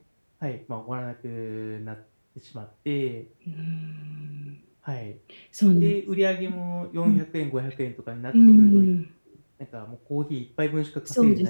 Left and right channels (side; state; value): both; inverted; correlation -1.00